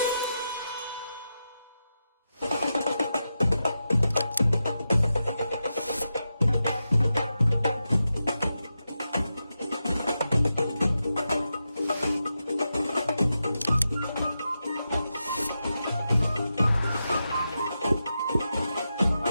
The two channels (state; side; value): inverted; both; correlation -0.89